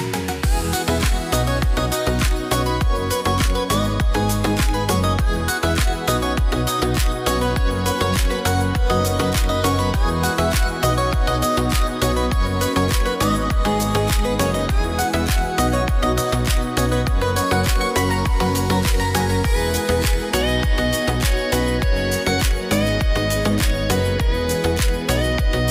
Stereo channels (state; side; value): identical; both; correlation 1.00